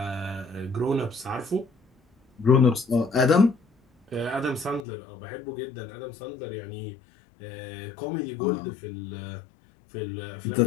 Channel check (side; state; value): right; drops out; at 4.9 s